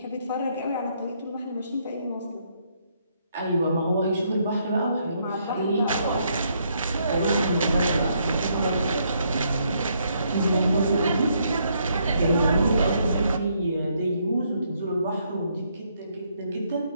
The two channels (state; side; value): inverted; both; correlation -0.73